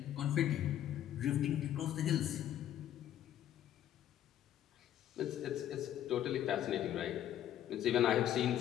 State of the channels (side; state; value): right; quieter; 11.5 dB